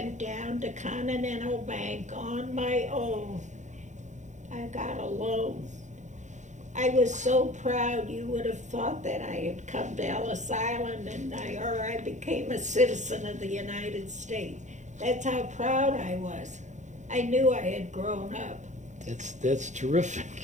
down to Continental Bank on my own. I got a loan. I was so proud. You would have thought that I had come to Ellis Island and I became a citizen of the United States. That's how proud I was. I knew I had grown up. That's terrific.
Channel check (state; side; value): late; left; 0.35 ms